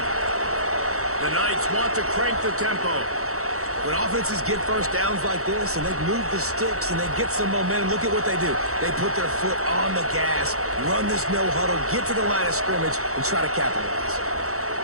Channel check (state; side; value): late; left; 0.64 ms